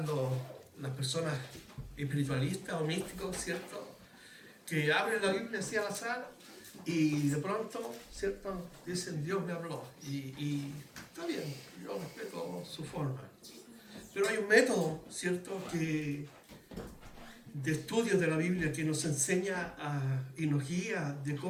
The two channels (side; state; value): both; identical; correlation 1.00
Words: las personas espiritualistas o místicos, ¿cierto? Que abren la Biblia así al azar y de pronto, ¿cierto? Dicen, Dios me habló. Y está bien, yo respeto su forma. Pero hay un método, ¿cierto?, de estudio de la Biblia que nos enseña y nos guía de